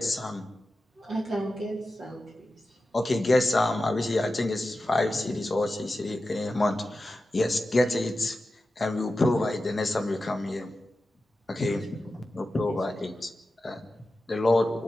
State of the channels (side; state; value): both; normal; correlation 0.93